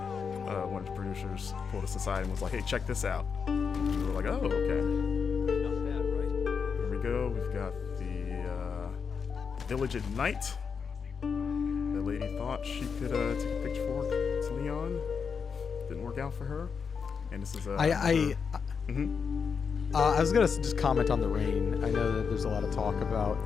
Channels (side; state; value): right; quieter; 6.0 dB